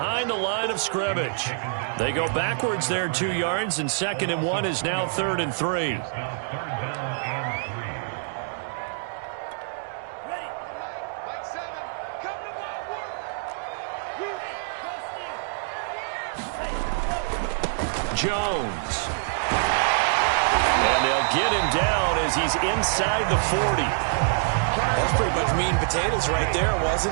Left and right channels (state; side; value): silent; left; digital silence